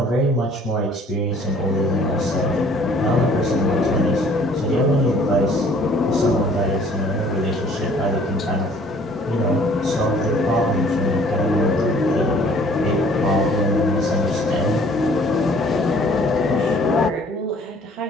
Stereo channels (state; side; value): normal; both; correlation 0.56